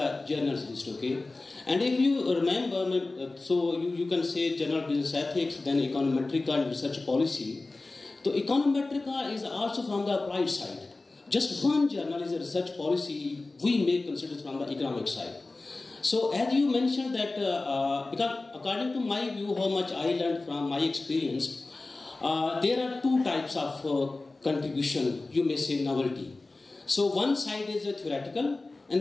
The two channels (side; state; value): right; quieter; 3.3 dB